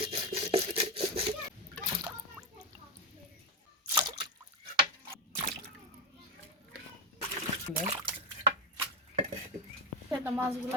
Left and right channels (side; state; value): both; normal; correlation 0.10